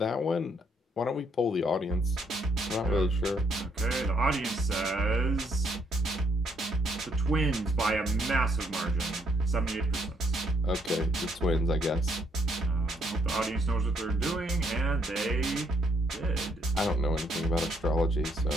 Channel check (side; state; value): both; normal; correlation 0.71